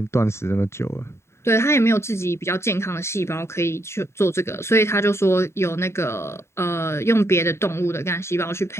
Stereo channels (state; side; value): late; right; 0.13 ms